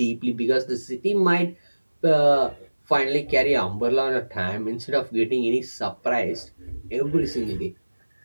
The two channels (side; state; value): both; inverted; correlation -1.00